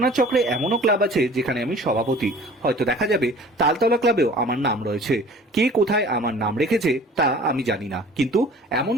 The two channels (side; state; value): both; normal; correlation 0.47